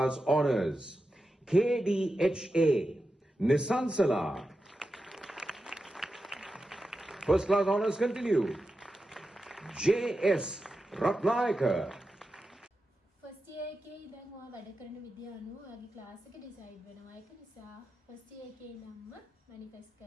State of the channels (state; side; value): normal; both; correlation 0.91